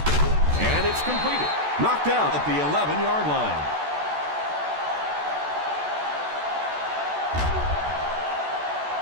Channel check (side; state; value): left; late; 14 ms